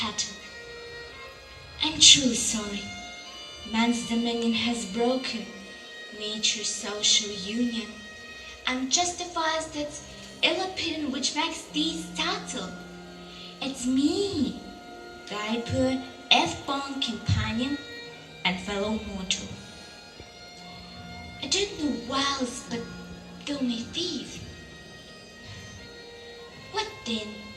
I'm truly sorry. Man's dominion has broken nature's social union and justifies that ill opinion which makes thee startle. It's me, thy poor F-born companion and fellow mortal. I don't know whiles, but thou may thief. What then?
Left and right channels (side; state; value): both; identical; correlation 1.00